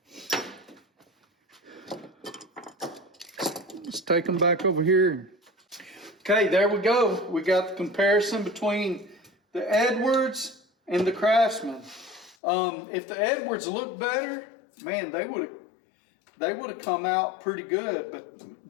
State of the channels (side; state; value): right; drops out; at 12.4 s